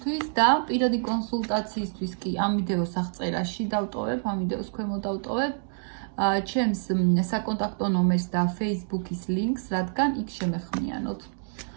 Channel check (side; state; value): left; silent; digital silence